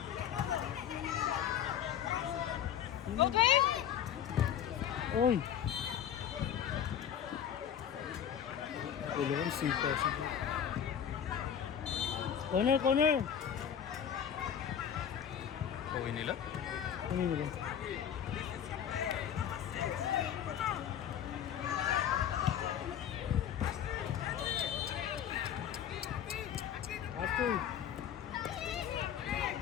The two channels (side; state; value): right; quieter; 9.2 dB